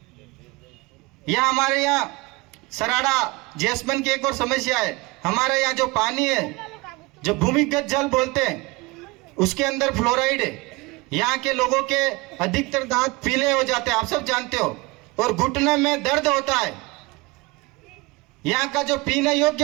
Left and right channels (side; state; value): left; quieter; 23.8 dB